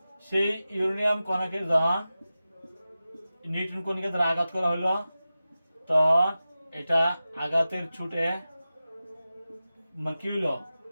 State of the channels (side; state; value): both; inverted; correlation -0.94